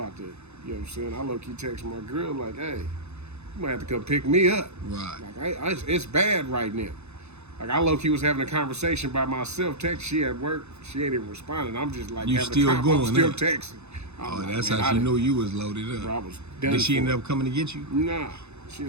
to, you know what I'm saying? I low-key text my girl like, hey, you might have to come pick me up. Right. Like, it's bad right now. Like, I low-key was having a conversation by myself. Text, she at work. She ain't even responding. I'm just like, you still going? I'm still texting. Oh, like, that's how she knew you was loaded up. Bro, I was done. Did she end up coming to get you? Nah. She's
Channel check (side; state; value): left; late; 0.81 ms